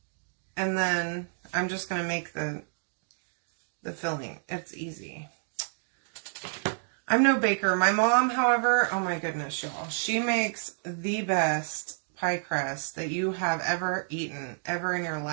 then I'm just going to make the filling. It's easy. I'm no baker. My mom, however, oh my goodness, y'all. She makes the best pie crust that you have ever eaten, ever in your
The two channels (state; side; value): silent; left; digital silence